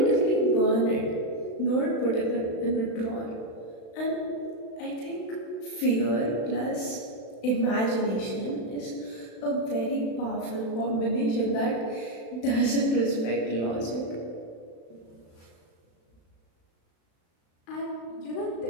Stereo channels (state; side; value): late; right; 35 ms